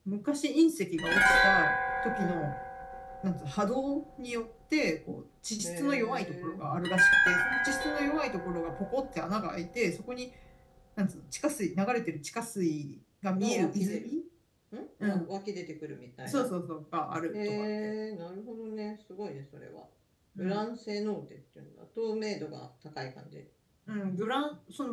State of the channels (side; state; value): both; identical; correlation 1.00